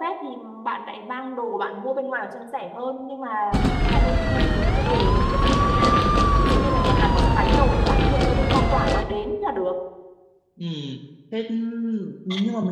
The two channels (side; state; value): both; identical; correlation 1.00